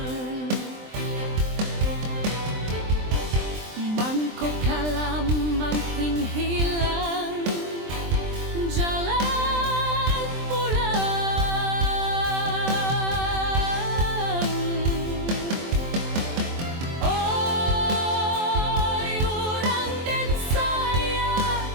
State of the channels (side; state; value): left; late; 23 ms